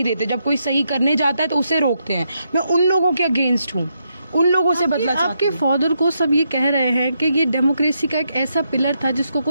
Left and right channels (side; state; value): both; inverted; correlation -0.80